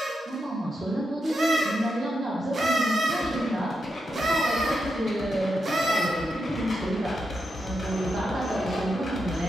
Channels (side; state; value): both; normal; correlation 0.85